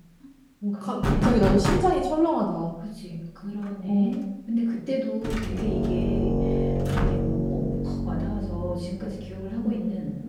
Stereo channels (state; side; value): identical; both; correlation 1.00